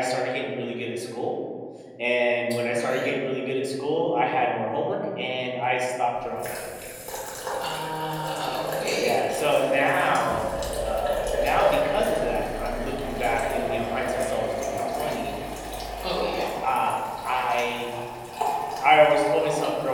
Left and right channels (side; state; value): both; identical; correlation 1.00